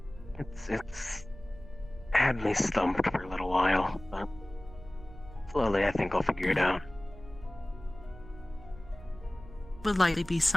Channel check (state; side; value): noise; right; hum, 18 dB below the sound